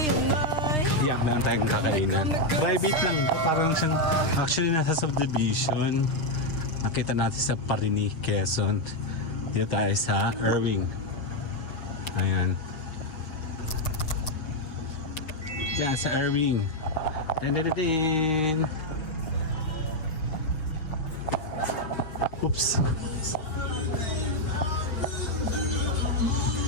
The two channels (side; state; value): right; late; 6.6 ms